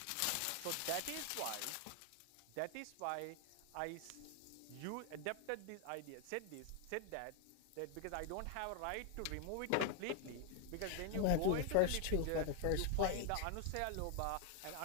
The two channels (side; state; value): both; different; correlation 0.00